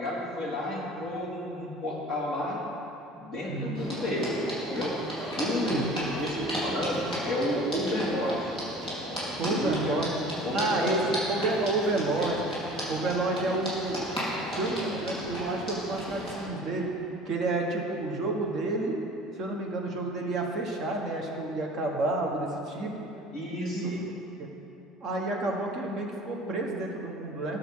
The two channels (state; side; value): normal; both; correlation 0.44